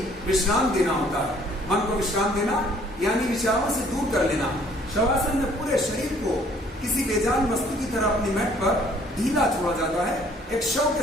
विश्राम देना होता है। मन को विश्राम देना यानी विचारों से दूर कर लेना। शवासन में पूरे शरीर को किसी बेजान वस्तु की तरह अपनी मैट पर ढीला छोड़ा जाता है। एक शव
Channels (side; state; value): both; normal; correlation 0.59